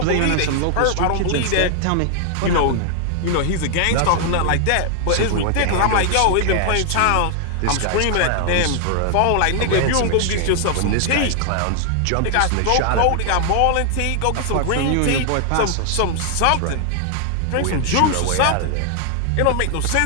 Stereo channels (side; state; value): both; different; correlation 0.00